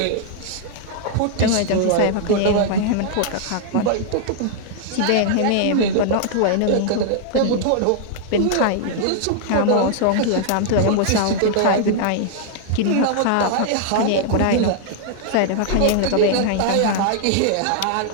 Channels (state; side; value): different; both; correlation 0.00